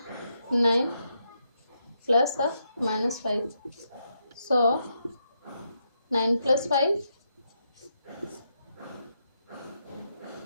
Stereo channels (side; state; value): both; inverted; correlation -0.81